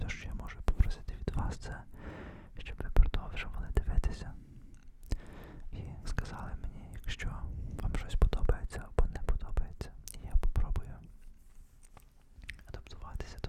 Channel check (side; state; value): both; identical; correlation 1.00